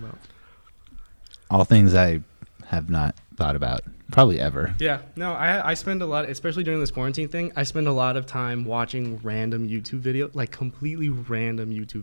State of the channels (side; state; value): both; inverted; correlation -1.00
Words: All things I have not thought about probably ever. Yeah, no, I spend a lot, especially during this quarantine thing, I spend a lot of time watching random YouTube videos, like completely random YouTube